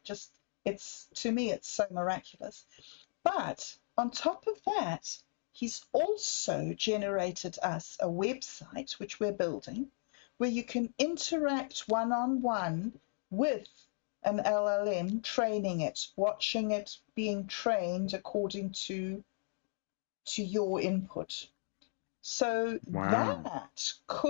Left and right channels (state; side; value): silent; right; digital silence